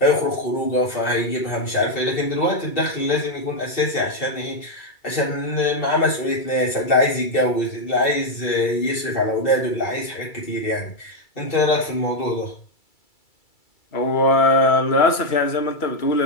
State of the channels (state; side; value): late; right; 2.3 ms